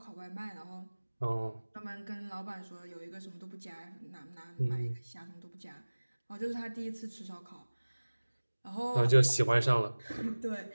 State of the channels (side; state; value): both; inverted; correlation -1.00